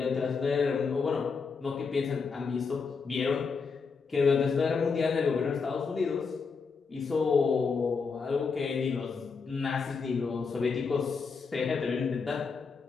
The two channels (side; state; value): right; quieter; 5.1 dB